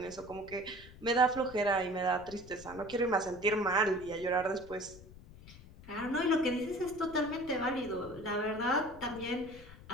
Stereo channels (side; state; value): left; noise; rumble, 18 dB below the sound